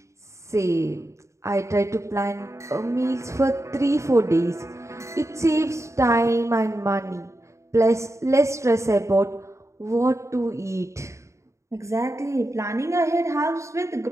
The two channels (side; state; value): left; late; 0.14 ms